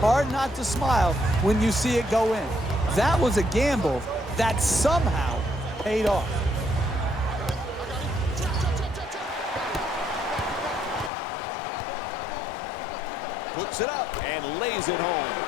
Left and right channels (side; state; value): right; drops out; at 11.1 s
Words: not to smile when you see it go in. That was a gamble that somehow paid off. Puts it up and lays it